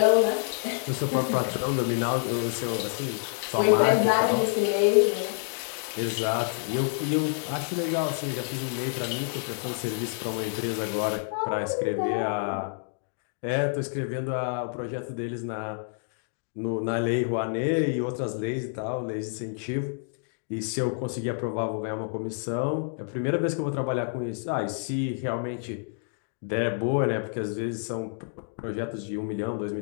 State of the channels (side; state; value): right; silent; 59 dB below the other